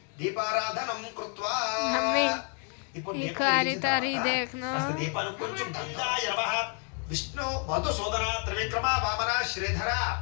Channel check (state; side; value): quieter; right; 38.5 dB